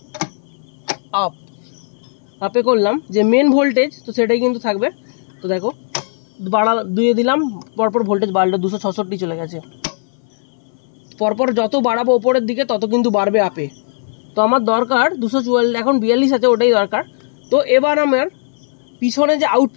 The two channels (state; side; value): silent; right; 64 dB below the other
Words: আপে করলাম যে মেন ভোল্টেজ, তো সেটাই কিন্তু থাকবে। তো দেখো দুয়ে দিলাম, পরপর ভোল্টেজ বাড়লো, 266 চলে গেছে। পরপর যত বাড়াবো ওপরের দিকে তত কিন্তু বাড়বে আপে। তো আমার দরকার 244, এখন 42 আছে, ওটাই দরকার। তো এবার আমার পিছনে